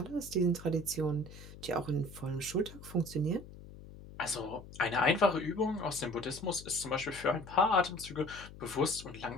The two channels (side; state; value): left; noise; hum, 16 dB below the sound